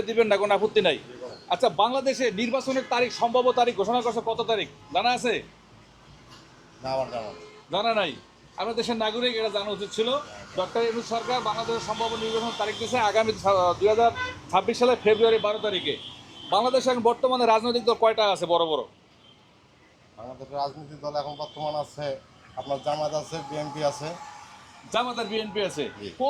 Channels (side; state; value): both; identical; correlation 1.00